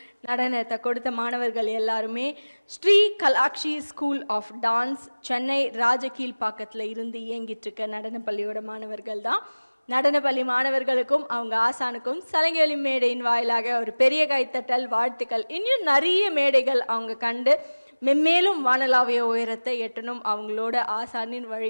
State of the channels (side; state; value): both; inverted; correlation -1.00